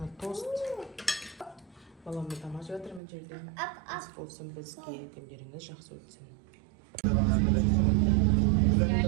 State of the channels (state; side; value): drops out; left; at 3.0 s